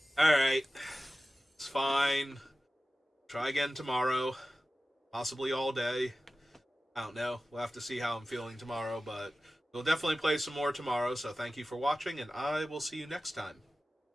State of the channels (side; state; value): both; normal; correlation 0.95